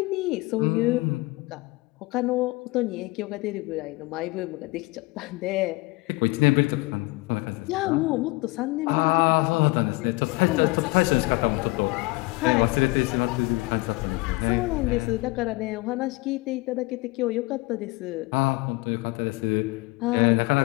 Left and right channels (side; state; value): right; quieter; 23.5 dB